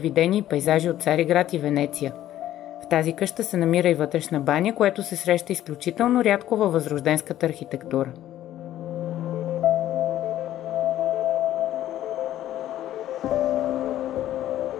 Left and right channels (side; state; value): right; quieter; 12.9 dB